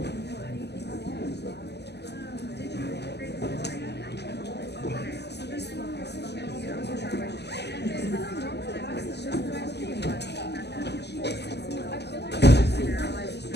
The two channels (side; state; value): right; late; 0.49 ms